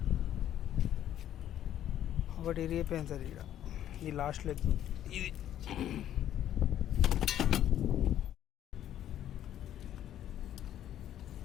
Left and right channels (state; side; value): quieter; right; 11.3 dB